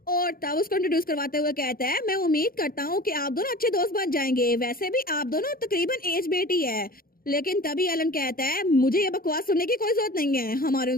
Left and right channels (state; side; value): late; right; 0.42 ms